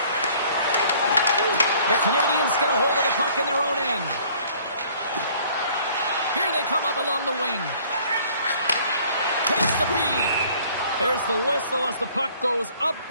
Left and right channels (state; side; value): inverted; both; correlation -0.56